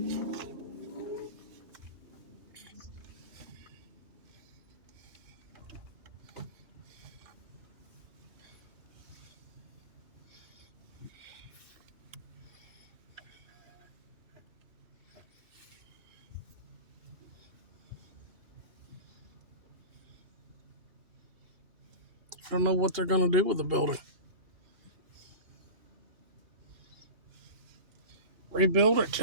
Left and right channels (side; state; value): left; late; 2.8 ms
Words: I don't know what they're going to do with the building. Rebuild it,